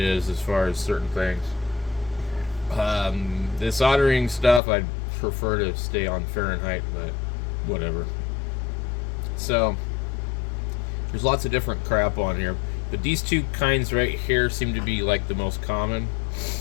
as far as certain things. The soldering stuff, I'd prefer to stay on Fahrenheit, but whatever. So, there's lots of different crap on here, but these two kinds right here seem to be like the most common.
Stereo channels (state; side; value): drops out; right; at 4.6 s